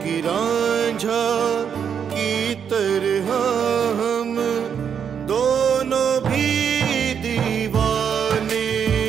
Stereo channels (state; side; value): quieter; left; 7.6 dB